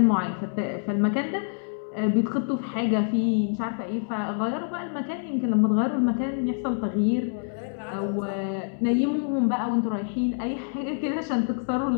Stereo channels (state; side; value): silent; right; digital silence